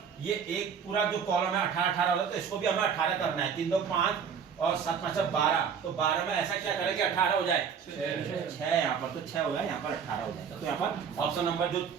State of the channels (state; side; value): quieter; left; 6.9 dB